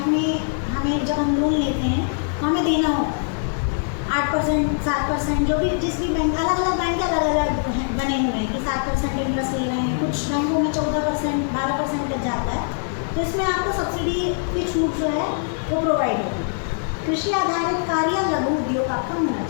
में हमें जब हम लोन लेते हैं तो हमें देना होता है 8%, 7%, जो भी जिस भी बैंक, अलग अलग बैंक अलग अलग बने हुए हैं कि 7% इंटरेस्ट ले रहे हैं, कुछ बैंकों में 14%, 12% तक जाता है। तो इसमें आपको सब्सिडी की छूट जो है वो प्रोवाइड होगी। कृषि आधारित कार्य लघु उद्योग आपका होना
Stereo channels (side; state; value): right; silent; digital silence